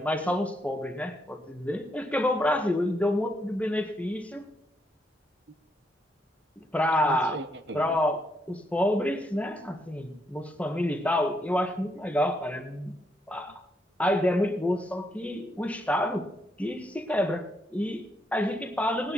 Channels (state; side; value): normal; both; correlation 0.77